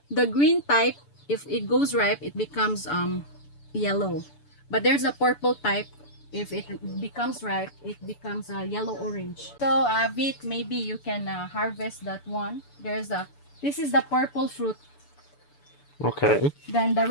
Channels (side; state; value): right; late; 6.9 ms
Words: green type. If it goes ripe, it becomes yellow. But there's a purple type. If it becomes ripe, it becomes yellow orange. So Vit, maybe you can harvest that one. This is the purple fruit. Okay. Then the